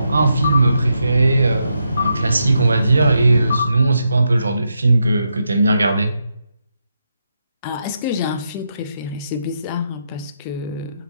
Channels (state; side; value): inverted; both; correlation -0.82